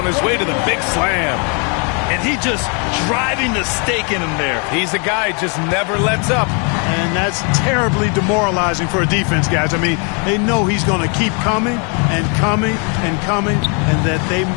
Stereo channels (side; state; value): right; quieter; 36.5 dB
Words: his way to the big slam. And he just driving the stake in him there. He's a guy just never lets up. And that's terribly demoralizing for a defense, guys. I mean, they know he's going to keep coming and coming and coming, and that they